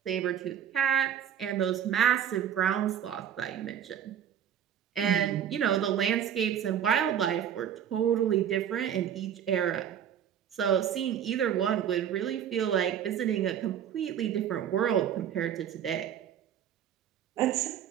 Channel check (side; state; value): left; quieter; 9.4 dB